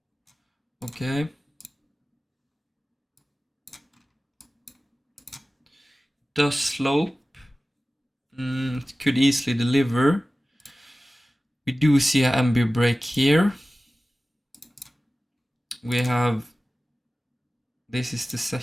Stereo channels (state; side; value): normal; both; correlation 0.96